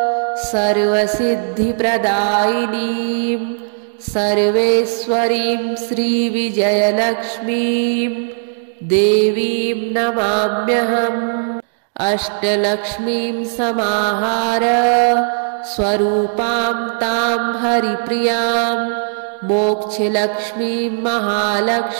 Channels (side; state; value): left; silent; digital silence